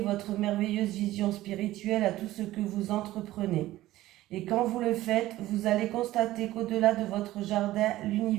merveilleuse vision spirituelle à tout ce que vous entreprenez. Et quand vous le faites, vous allez constater qu'au-delà de votre jardin,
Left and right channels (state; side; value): quieter; left; 15.9 dB